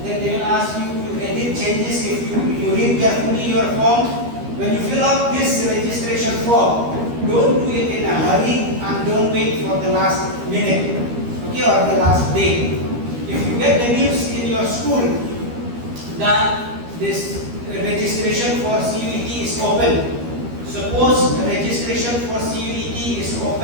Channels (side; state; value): left; late; 13 ms